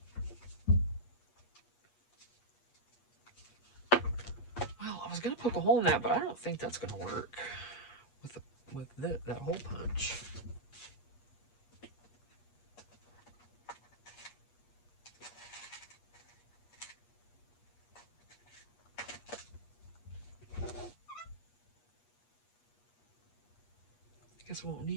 Well, I was going to poke a hole in that, but I don't think that's going to work with that hole punch. I guess I won't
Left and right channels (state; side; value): late; right; 8.4 ms